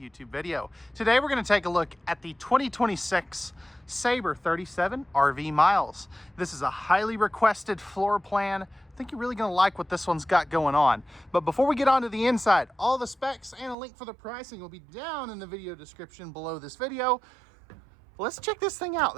video. Today, we're going to take a look at the 2026 Sabre 37 RV Miles. This is a highly requested floor plan. I think you're really going to like what this one's got going on. But before we get on to the inside, all the specs and a link for the pricing will be down in the video description below this video. Let's check this thing out.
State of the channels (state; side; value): drops out; left; at 13.8 s